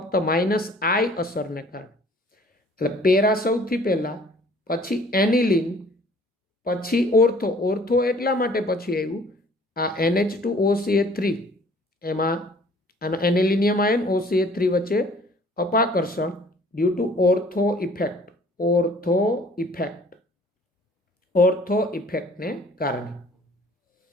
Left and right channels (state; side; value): normal; both; correlation 0.54